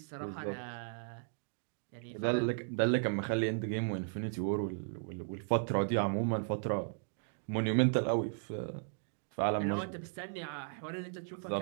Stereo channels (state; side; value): silent; left; digital silence